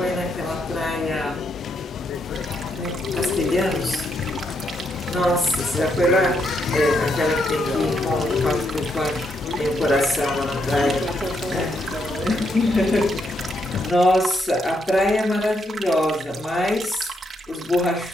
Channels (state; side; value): normal; both; correlation 0.78